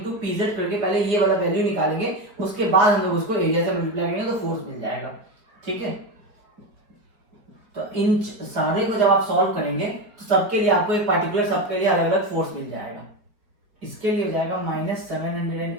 PZ करके पहले ये वाला वैल्यू निकालेंगे, उसके बाद हम लोग उसको एरिया से मल्टीप्लाई करेंगे तो फोर्स मिल जाएगा, ठीक है। तो इन सारे को जब आप सॉल्व करेंगे तो सबके लिए आपको एक पार्टिकुलर सबके लिए अलग अलग फोर्स मिल जाएगा। इसके लिए हो जाएगा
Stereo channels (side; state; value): left; late; 4.5 ms